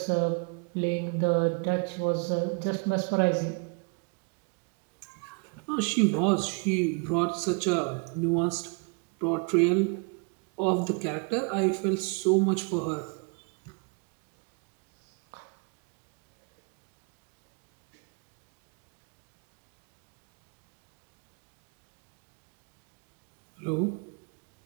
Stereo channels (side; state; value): left; quieter; 35.8 dB